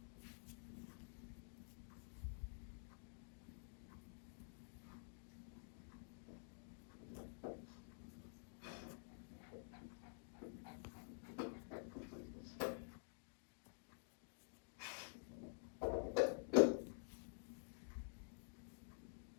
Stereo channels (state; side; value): silent; right; digital silence